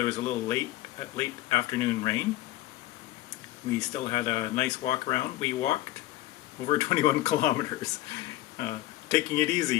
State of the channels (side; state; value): right; quieter; 16.3 dB